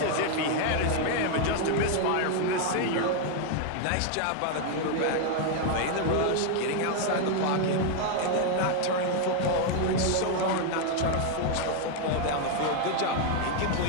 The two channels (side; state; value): both; different; correlation 0.01